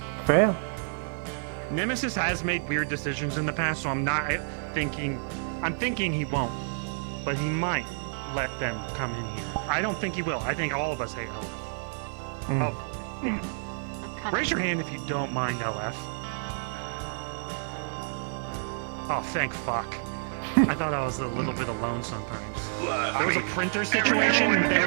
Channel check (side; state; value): left; silent; digital silence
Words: fair. Nemesis has made weird decisions in the past, so I'm not thinking. I'm thinking he won't. but he might let them come in here. I don't think he will. I think all of us hate LF. Hopefully. Raise your hand if you don't mind LF. Oh, thank fuck. I thought I was a little bit alone sometimes. There was a printer situation.